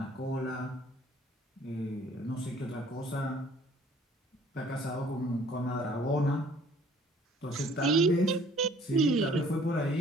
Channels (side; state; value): both; normal; correlation 0.56